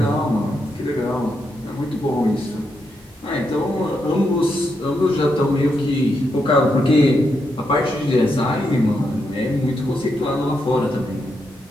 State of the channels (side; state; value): both; normal; correlation 0.82